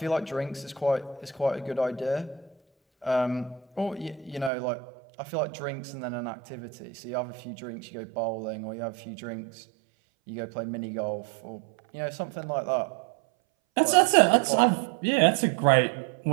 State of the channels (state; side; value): drops out; left; at 4.5 s